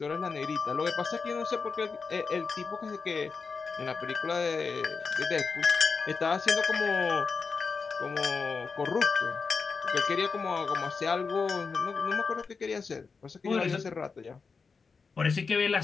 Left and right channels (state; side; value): quieter; right; 4.9 dB